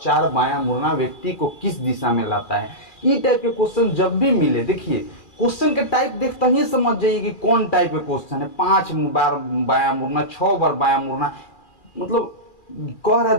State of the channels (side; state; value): right; late; 2.4 ms